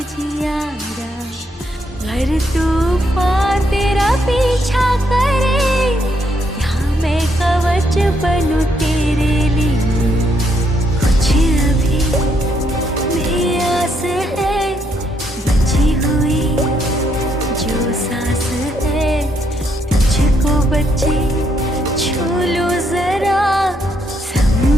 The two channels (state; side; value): normal; both; correlation 0.75